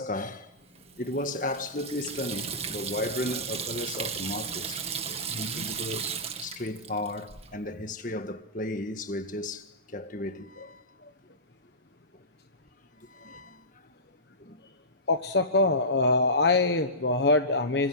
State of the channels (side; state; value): both; normal; correlation -0.18